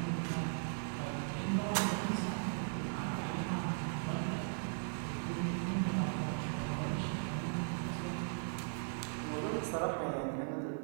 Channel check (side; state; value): left; silent; digital silence